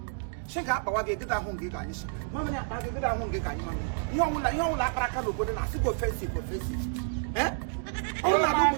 she got power get that hungry guy. Mamma, I get that hungry guy. You don't like Rakano, but I go face it. Eh? All I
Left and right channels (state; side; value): silent; left; 58 dB below the other